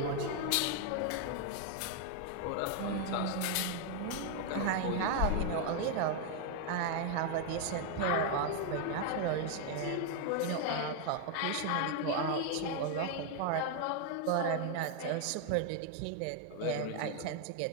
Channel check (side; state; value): both; different; correlation 0.00